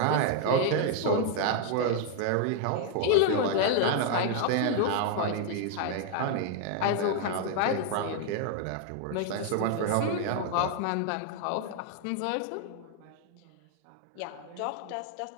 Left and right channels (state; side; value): different; both; correlation 0.00